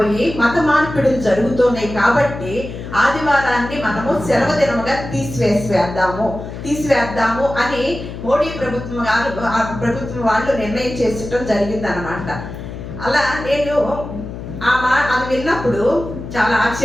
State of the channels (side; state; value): left; noise; hum, 10 dB below the sound